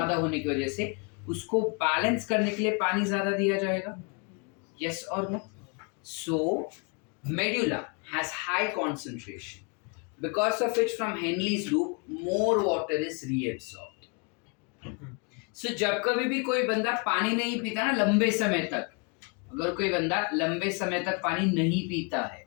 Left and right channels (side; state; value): right; quieter; 34.0 dB